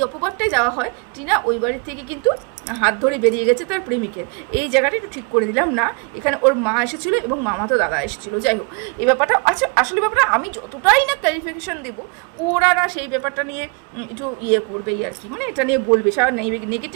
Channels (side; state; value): left; quieter; 33.4 dB